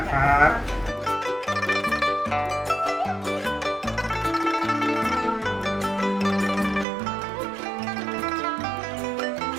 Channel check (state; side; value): drops out; left; at 6.9 s